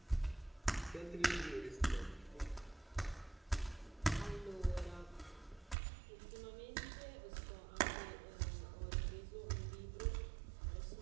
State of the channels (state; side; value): drops out; left; at 5.8 s